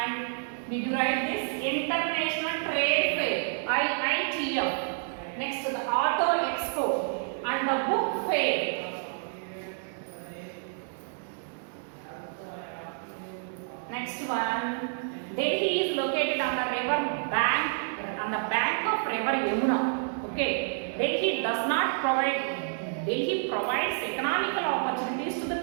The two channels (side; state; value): left; silent; digital silence